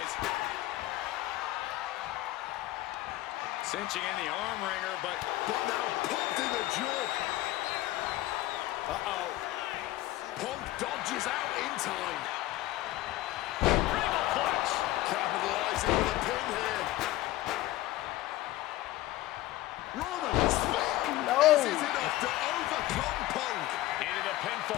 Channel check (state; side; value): quieter; right; 16.6 dB